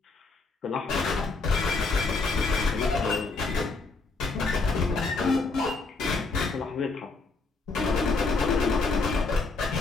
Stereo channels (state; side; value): quieter; right; 3.8 dB